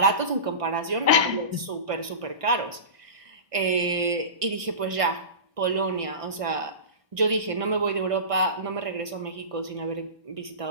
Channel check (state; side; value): late; left; 1.5 ms